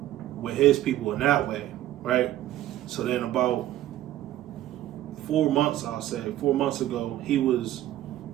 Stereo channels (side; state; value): left; quieter; 13.6 dB